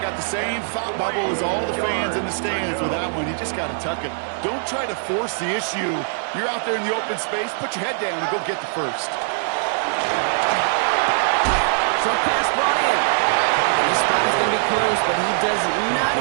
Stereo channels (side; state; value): left; silent; digital silence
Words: got the same thought bubble as all the fans in the stands with that one. You just got to tuck it. Don't try to force the issue. You're out there in the open space. Put your head down and go get the first. Short pass brought in. His spot is going to be close, but he does not